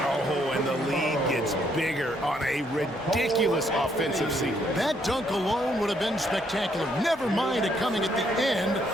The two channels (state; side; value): normal; both; correlation 0.71